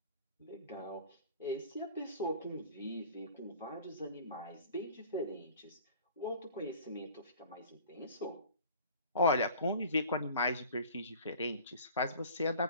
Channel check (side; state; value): both; inverted; correlation -0.45